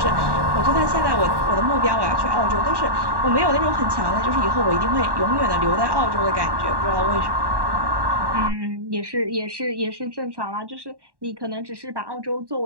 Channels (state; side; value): late; left; 1.1 ms